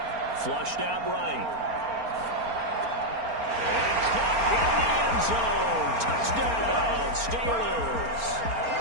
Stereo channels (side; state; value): left; late; 4.3 ms